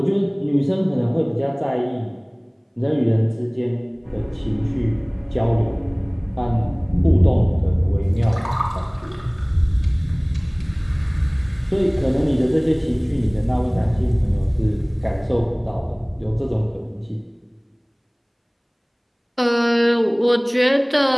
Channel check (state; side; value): identical; both; correlation 1.00